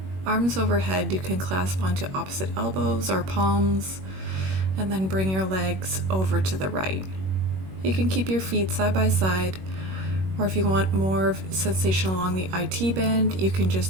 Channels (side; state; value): left; late; 21 ms